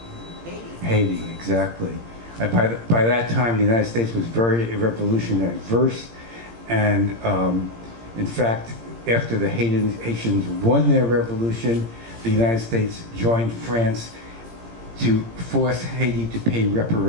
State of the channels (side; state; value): left; late; 17 ms